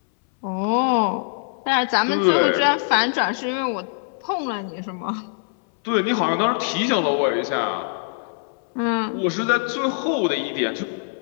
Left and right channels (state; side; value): silent; right; 63 dB below the other